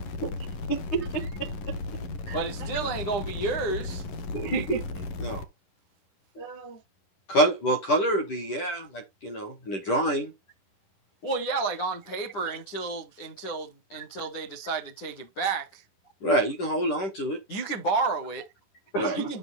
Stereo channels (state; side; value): late; right; 10 ms